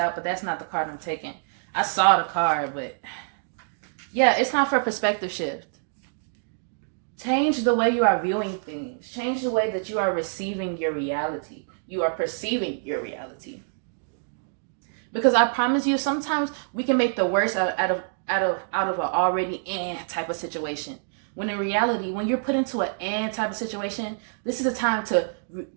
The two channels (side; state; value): left; silent; digital silence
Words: but that's not the card I'm taking. I saw the card, but yeah, it's time for a perspective shift. Change the way you are viewing things. Change the way that you are receiving your reality. You are perceiving your reality. Because I promise you, sometimes we can make the worst out of an already type of situation. When in reality, when you're put into an type of situation, this is a time